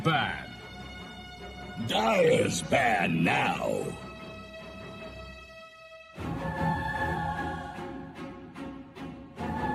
Dire's ban now.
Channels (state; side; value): identical; both; correlation 1.00